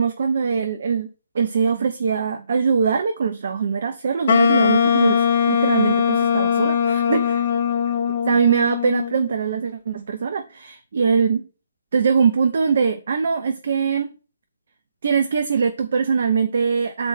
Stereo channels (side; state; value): both; inverted; correlation -0.72